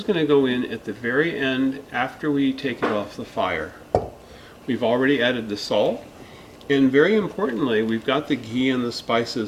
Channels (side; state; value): both; identical; correlation 1.00